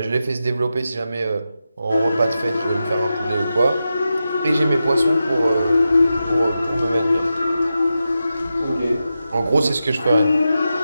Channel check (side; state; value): both; inverted; correlation -0.90